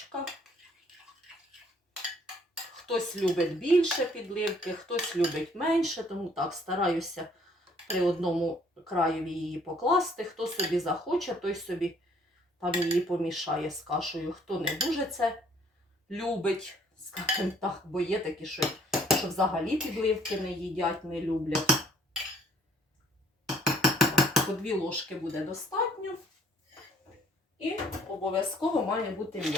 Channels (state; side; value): normal; both; correlation 0.62